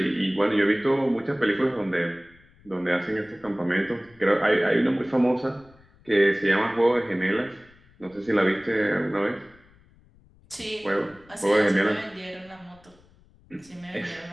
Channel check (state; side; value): noise; left; rumble, 29 dB below the sound